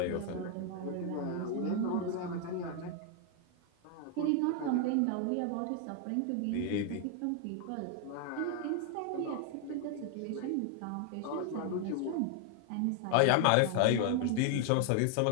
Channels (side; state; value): both; different; correlation 0.00